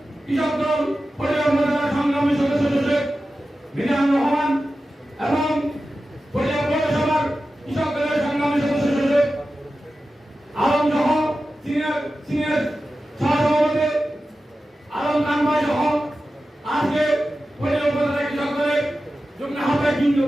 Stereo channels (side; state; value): both; normal; correlation 0.93